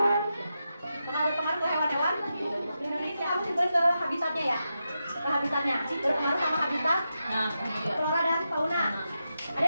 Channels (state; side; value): inverted; both; correlation -0.88